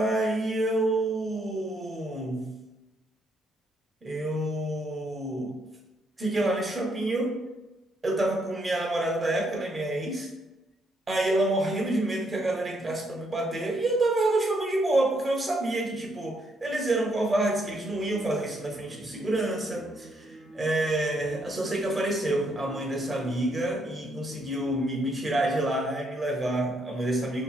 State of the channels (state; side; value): normal; both; correlation 0.73